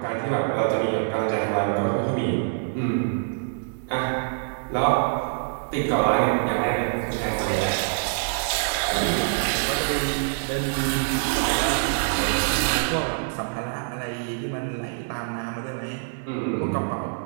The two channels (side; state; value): left; silent; digital silence